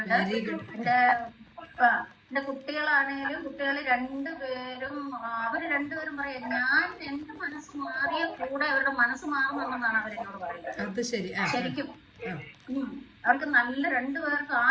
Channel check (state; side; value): identical; both; correlation 1.00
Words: എന്റെ കുട്ടികളാണേലും കുട്ടികള് രണ്ടുപേരും രണ്ടുപേരും പറയാം, ഞാൻ എന്റെ മനസ്സ് മാറിയ കൂടെ അവരുടെ മനസ്സ് മാറുമെന്നാണ് അവരെന്നോട് പറയുന്നത്. ശരിക്കും അവർക്ക് നല്ല രണ്ടുപേർക്ക്